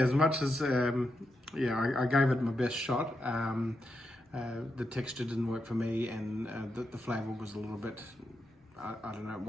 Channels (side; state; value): both; normal; correlation 0.85